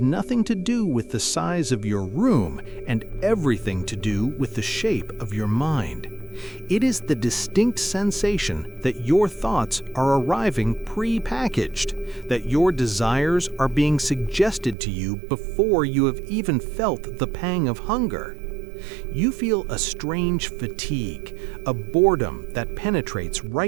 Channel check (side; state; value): left; drops out; at 14.8 s